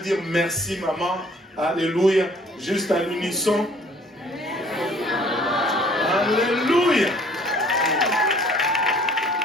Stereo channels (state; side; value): normal; both; correlation 0.56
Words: merci maman? Alléluia. Juste à l'unisson. Alléluia.